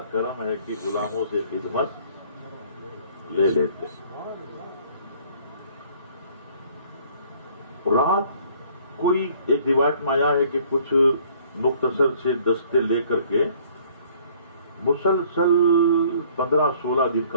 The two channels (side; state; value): both; inverted; correlation -0.57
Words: کرم ہے کہ غلاموں سے خدمت لے لیتے. رات کوئی ایک روایت میں آیا ہے کہ کچھ مختصر سے دستے لے کر کے مسلسل 15-16 دن